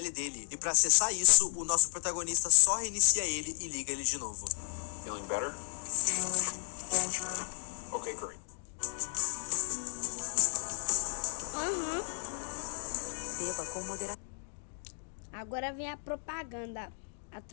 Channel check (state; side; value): silent; right; digital silence